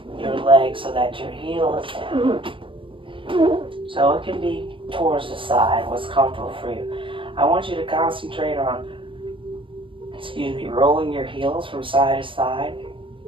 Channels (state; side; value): late; left; 0.25 ms